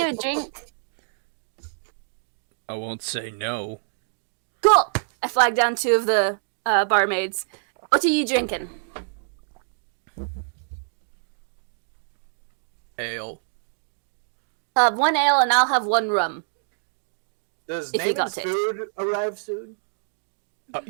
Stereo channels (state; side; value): silent; left; digital silence